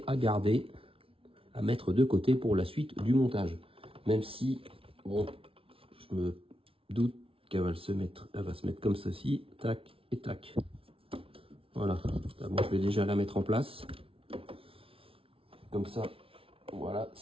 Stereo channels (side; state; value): left; late; 0.26 ms